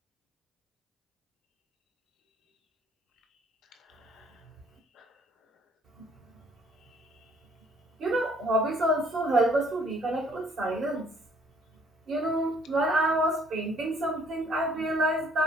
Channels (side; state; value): both; normal; correlation 0.61